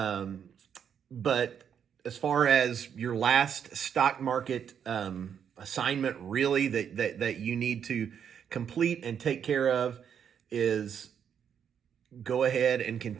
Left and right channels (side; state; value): left; quieter; 8.1 dB